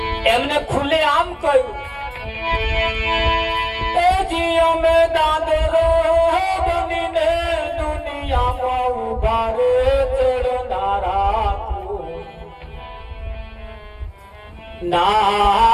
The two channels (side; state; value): both; identical; correlation 1.00